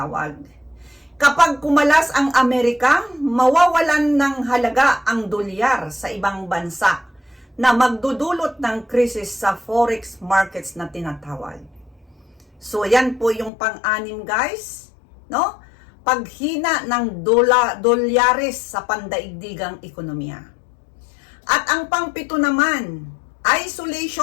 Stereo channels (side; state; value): right; drops out; at 13.5 s